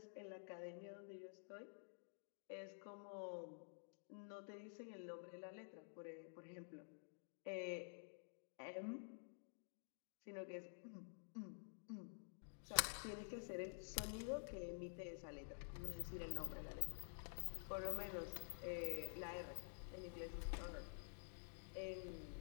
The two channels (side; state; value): right; silent; digital silence